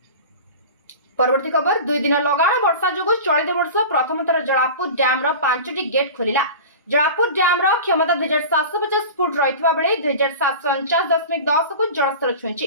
परवर्ती खबर दुई दिन लगाण वर्षा जोगु चलित वर्ष प्रथम थर जलापुर डैम रो 5टी गेट खोलिला। जलापुर डैम रो क्षमता 2750 फुट रहितबा बेले 2749.10 को जलस्तर छुईछि।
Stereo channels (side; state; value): both; inverted; correlation -0.33